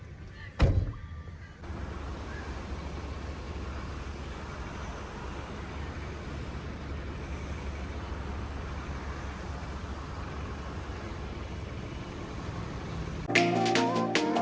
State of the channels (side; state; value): both; identical; correlation 1.00